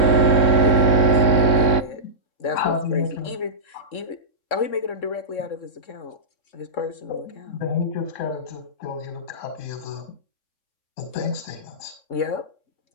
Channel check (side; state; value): right; late; 3.7 ms